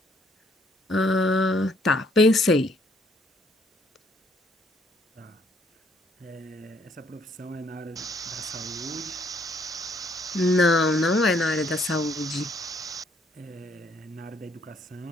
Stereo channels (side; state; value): both; normal; correlation 0.67